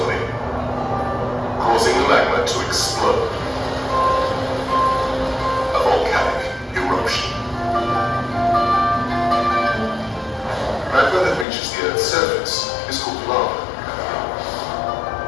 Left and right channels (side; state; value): right; drops out; at 11.5 s